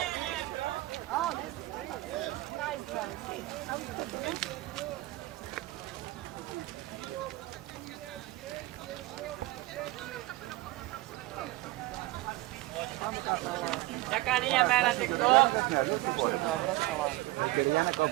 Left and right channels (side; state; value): left; quieter; 18.5 dB